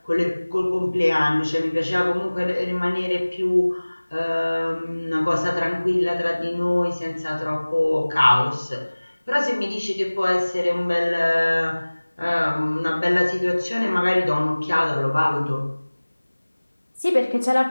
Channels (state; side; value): inverted; both; correlation -1.00